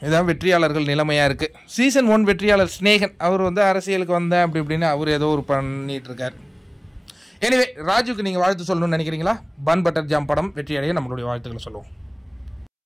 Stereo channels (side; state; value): both; identical; correlation 1.00